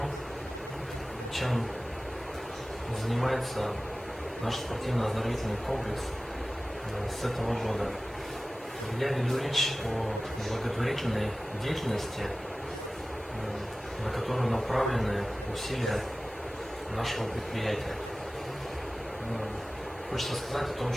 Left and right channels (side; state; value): both; normal; correlation 0.96